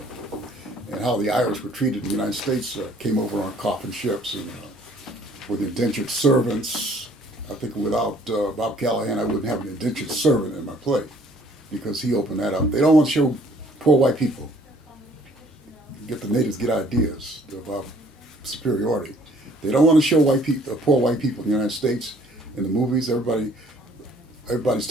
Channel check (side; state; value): both; normal; correlation 0.59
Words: and how the Irish were treated in the United States. Came over on coffin ships and with indentured servants. I think without Bob Callahan, I wouldn't have an indentured servant in my play, because he opened that up. They don't want to show poor white people. Get the natives get ideas about superiority. They don't want to show poor white people in the United States in the movies. Everybody's